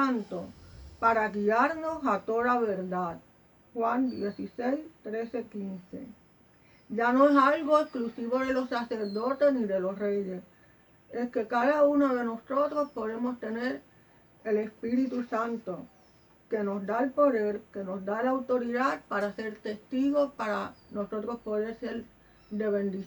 para guiarnos a toda verdad. Juan 16, 13, 15. Ya no es algo exclusivo de los sacerdotes ni de los reyes. es que cada uno de nosotros podemos tener el Espíritu Santo, que nos da el poder, que nos da la autoridad para ser testigos, para nosotros poder ser de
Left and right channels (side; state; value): both; identical; correlation 1.00